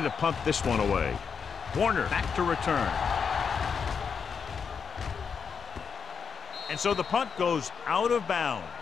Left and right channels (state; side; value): quieter; right; 6.3 dB